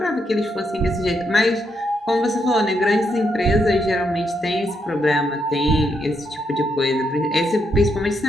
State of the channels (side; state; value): both; normal; correlation 0.79